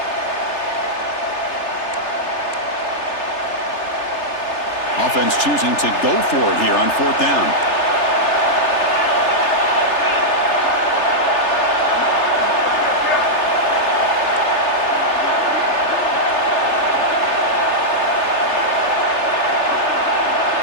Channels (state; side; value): late; right; 3.3 ms